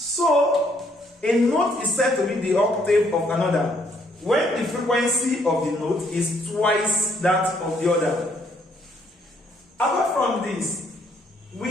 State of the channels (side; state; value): both; normal; correlation 0.68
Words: a note is said to be the octave of another when the frequency of the note is twice that of the other. Apart from this,